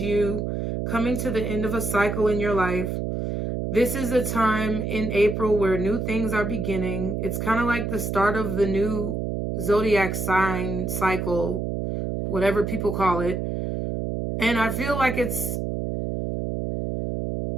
you coming to the end of a cycle in your life. This is a time in April where new things are beginning. It's kind of like the start of the new zodiac sign cycle, whatever people call it. And I feel like it's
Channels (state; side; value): noise; right; hum, 2 dB below the sound